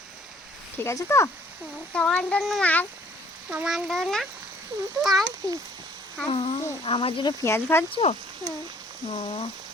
ঠিক আছে তো? তোমার জন্য মাছ, তোমার জন্য পেঁয়াজ পিস। আমার জন্য পেঁয়াজ ভাজছো? ও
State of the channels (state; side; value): normal; both; correlation 0.59